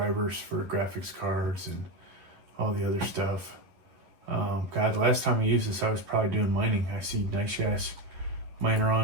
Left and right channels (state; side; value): late; left; 11 ms